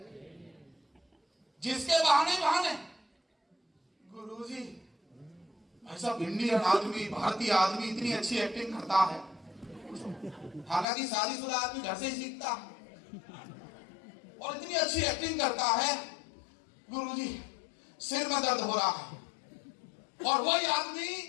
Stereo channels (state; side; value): drops out; right; at 10.9 s